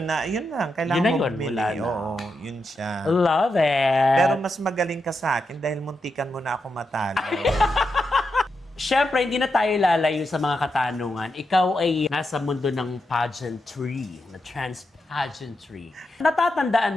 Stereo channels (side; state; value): both; normal; correlation 0.86